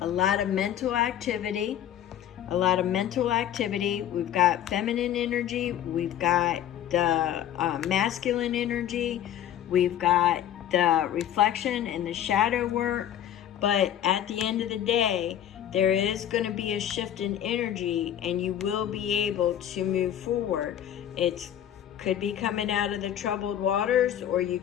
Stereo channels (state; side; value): quieter; right; 10.8 dB